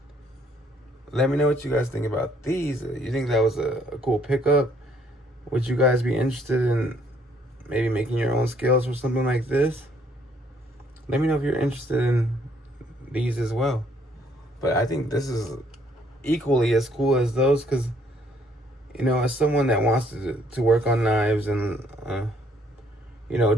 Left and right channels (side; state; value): both; normal; correlation 0.66